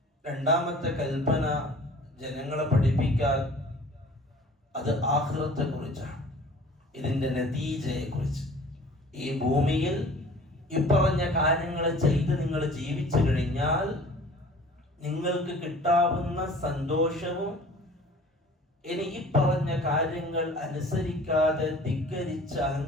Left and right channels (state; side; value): normal; both; correlation 0.47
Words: രണ്ടാമത്തെ കൽപ്പന ജനങ്ങളെ പഠിപ്പിക്കാൻ അത് ആഖിറത്തെ കുറിച്ചാണ്, ഇതിന്റെ നതീജയെ കുറിച്ച്. ഈ ഭൂമിയിൽ ഇപ്പറഞ്ഞ കാര്യങ്ങൾ ചെയ്ത് നിങ്ങൾ ജീവിച്ചു കഴിഞ്ഞാൽ നിങ്ങൾക്ക് കിട്ടാവുന്ന സന്തോഷവും ഇനി ഈ പറഞ്ഞ കാര്യങ്ങൾ അനുസരിക്കാതെ ധിക്കരിച്ച്